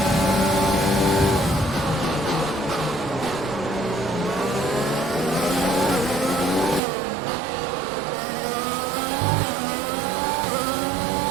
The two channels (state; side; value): drops out; left; at 6.8 s